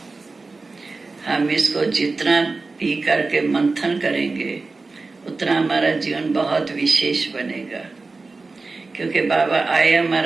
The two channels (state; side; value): quieter; left; 3.8 dB